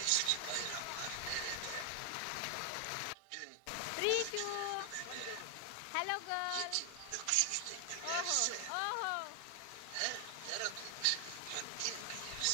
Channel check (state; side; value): different; both; correlation 0.00